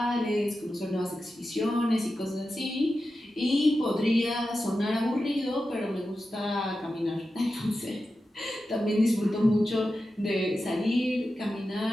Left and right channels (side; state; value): both; normal; correlation 0.92